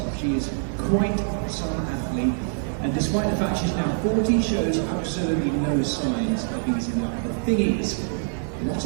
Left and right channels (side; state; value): left; silent; 56 dB below the other